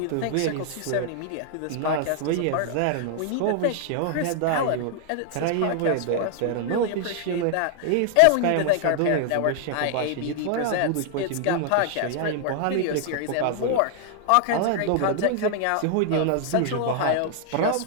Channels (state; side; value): different; both; correlation 0.00